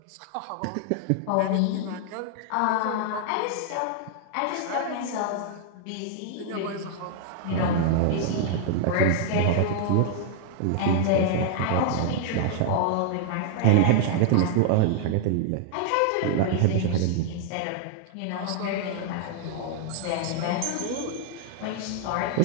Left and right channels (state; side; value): different; both; correlation -0.01